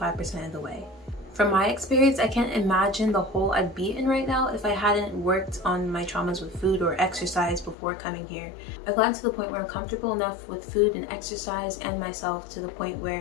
of the way. From my experience, I can't imagine the hole I'd be in right now if I hadn't worked on my traumas with food or exercise before coming here. I've gotten to the point where I'm comfortable enough with food and exercise and myself to the point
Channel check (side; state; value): right; drops out; at 7.8 s